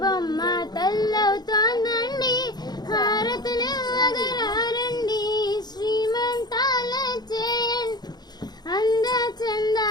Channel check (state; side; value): late; right; 0.20 ms